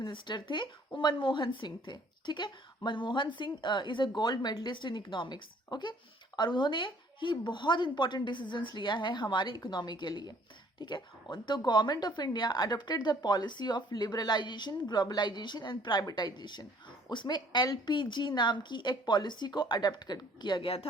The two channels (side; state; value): both; normal; correlation 0.58